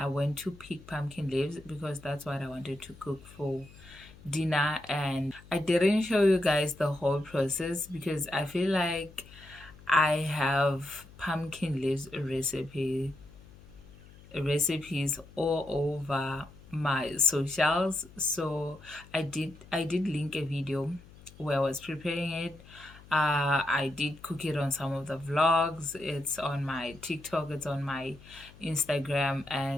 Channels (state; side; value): noise; left; hum, 21 dB below the sound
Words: went to pick pumpkin leaves because that's what I wanted to cook for dinner. And I didn't show you guys the whole process because I feel like I have pumpkin leaves recipes all over my socials. So I did link a video where I was preparing it. I did cook it on some of the vlogs. It's on my TikTok, it's on my Instagram,